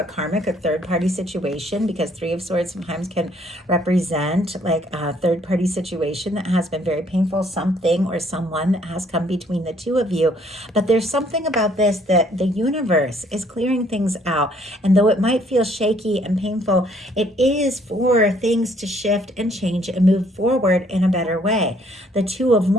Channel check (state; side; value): normal; both; correlation 0.64